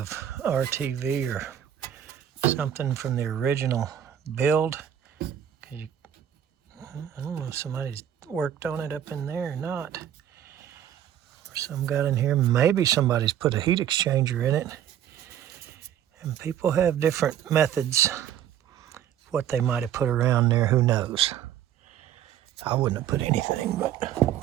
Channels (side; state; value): left; quieter; 10.3 dB